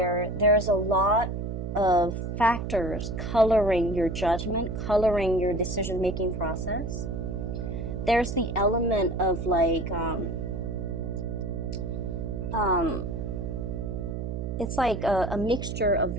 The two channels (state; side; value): noise; right; hum, 4 dB below the sound